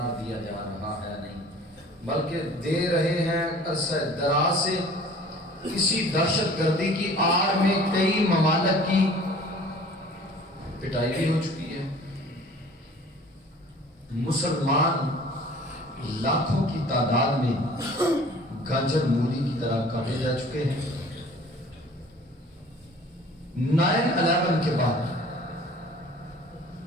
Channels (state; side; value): normal; both; correlation 0.47